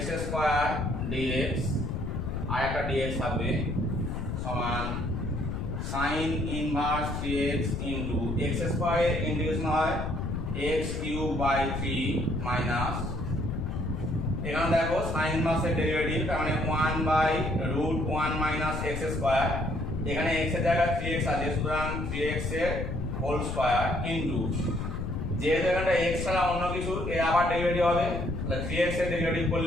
স্কয়ার dx আর একটা dx থাকবে সমান sine inverse 3x into x স্কয়ারের ইন্টিগ্রেশন হয় x কিউব বাই 3 মাইনাস, এখানে দেখো সাইন ইনভার্সের ডেরিভেটিভ তার মানে 1 by root 1 minus x square, এখানে x এর জায়গায় 3x আছে সুতরাং 3x এর হোল স্কয়ার ইনটু যেহেতু এখানটা x ছাড়া অন্য কিছু এর আবার ডেরিভেটিভ হবে, তাহলে 3x এর ডেরিভেটিভ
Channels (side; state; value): left; noise; rumble, 3 dB below the sound